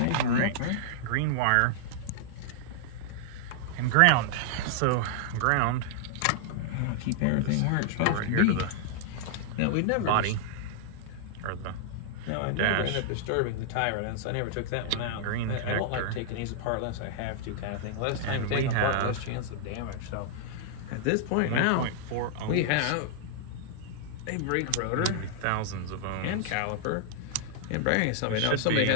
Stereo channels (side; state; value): both; different; correlation -0.01